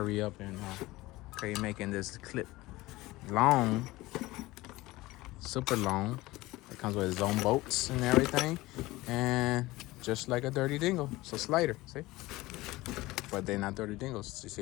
up and try making this clip long, super long. It comes with its own bolts and everything, and just like a dirty dingle, it's a slider. See? But they're not dirty dingles. You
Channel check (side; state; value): right; quieter; 19.4 dB